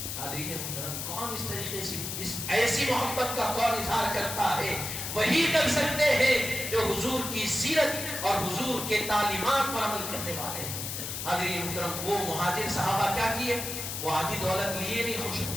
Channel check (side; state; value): left; noise; hiss, 5 dB below the sound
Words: حاضرین محترم، کون اس طریقے سے اس ایسی محبت کا کون اظہار کرتا ہے؟ وہی کر سکتے ہیں جو حضور کی سیرت اور حضور کے تعلیمات پر عمل کرنے والے ہیں۔ حاضرین محترم، وہ مہاجر صحابہ کیا کیے؟ وہ آدھی دولت لیے نہیں خوش ہو